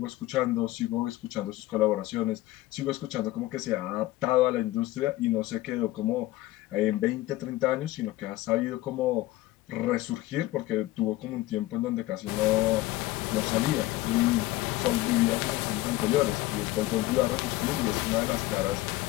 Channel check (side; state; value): right; quieter; 17.0 dB